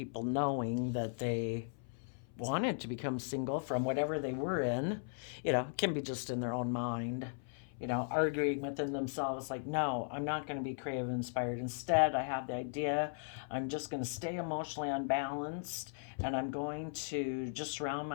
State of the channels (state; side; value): silent; right; 53 dB below the other